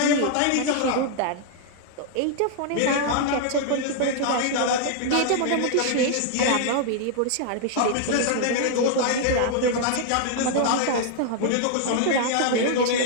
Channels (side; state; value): both; different; correlation 0.00